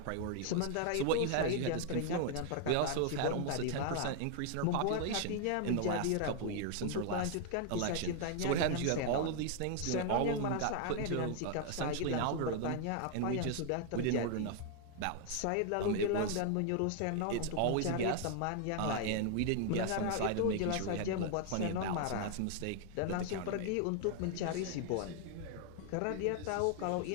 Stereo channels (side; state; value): both; different; correlation 0.00